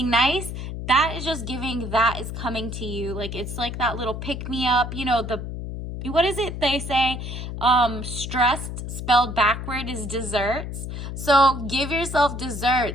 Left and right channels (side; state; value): left; noise; hum, 6 dB below the sound